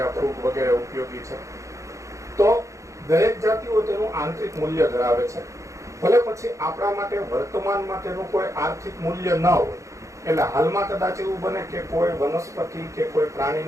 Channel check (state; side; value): late; left; 0.15 ms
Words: ફૂગ વગેરે ઉપયોગી છે. તો દરેક જાતિઓ તેનું આંતરિક મૂલ્ય ધરાવે છે. ભલે પછી આપણા માટે વર્તમાનમાં તેનું કોઈ આર્થિક મૂલ્ય ન હોય. એટલે હાલમાં કદાચ એવું બને કે કોઈ વનસ્પતિ કે કોઈ